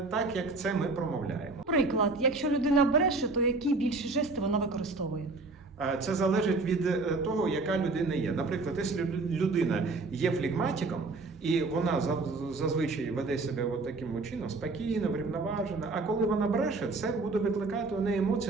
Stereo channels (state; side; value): quieter; left; 3.6 dB